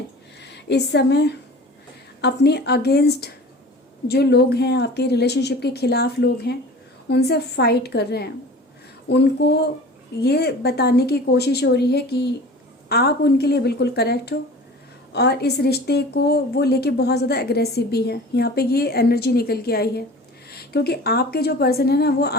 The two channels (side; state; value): both; normal; correlation 0.41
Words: इस समय अपने अगेंस्ट जो लोग हैं, आपके रिलेशनशिप के खिलाफ लोग हैं, उनसे फाइट कर रहे हैं। उनको ये बताने की कोशिश हो रही है कि आप उनके लिए बिल्कुल करेक्ट हो और इस रिश्ते को वो लेके बहुत ज़्यादा एग्रेसिव भी है। यहाँ पे ये एनर्जी निकल के आई है क्योंकि आपके जो पर्सन है ना, वो